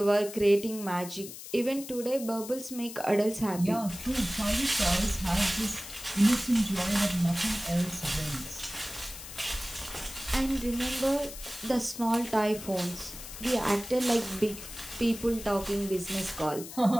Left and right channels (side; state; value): left; noise; hiss, 12 dB below the sound